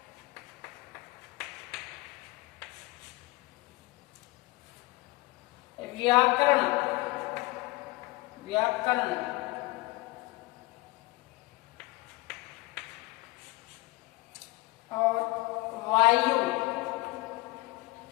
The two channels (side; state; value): right; quieter; 22.3 dB